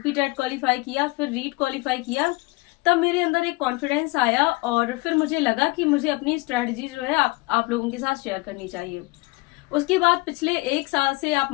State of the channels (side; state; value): right; quieter; 24.2 dB